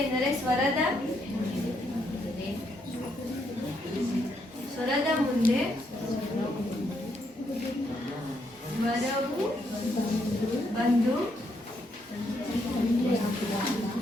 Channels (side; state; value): both; normal; correlation 0.76